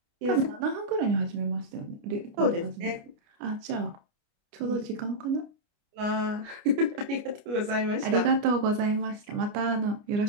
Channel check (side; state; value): left; late; 29 ms